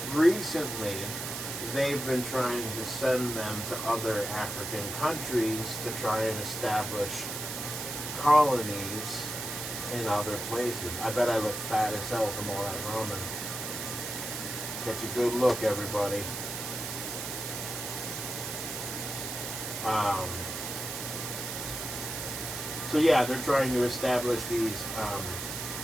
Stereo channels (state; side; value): noise; right; hiss, 5 dB below the sound